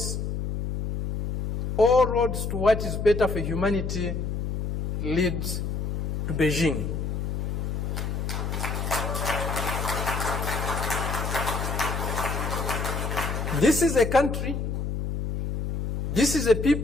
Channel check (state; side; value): noise; left; hum, 2 dB below the sound